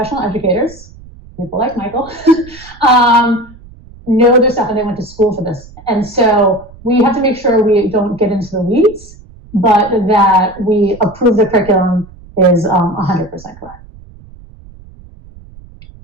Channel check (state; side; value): noise; right; rumble, 21 dB below the sound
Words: educators, people like Michael, know their stuff and they went to school for this. And so we have to make sure we don't get into the weeds, but that we approve the curriculum is 100% correct.